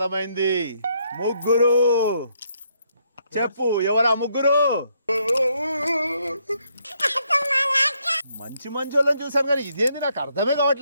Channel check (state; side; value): inverted; both; correlation -0.73